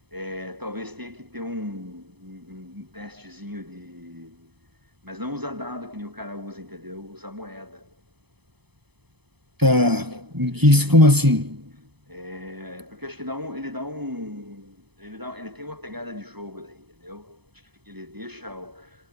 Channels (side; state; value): left; late; 0.98 ms